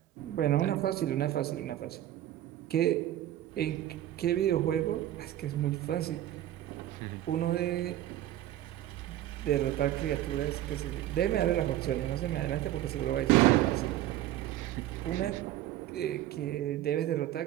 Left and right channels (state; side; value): quieter; left; 13.3 dB